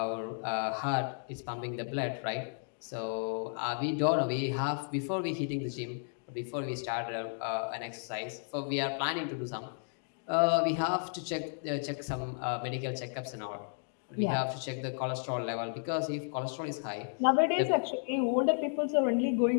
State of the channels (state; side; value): silent; right; digital silence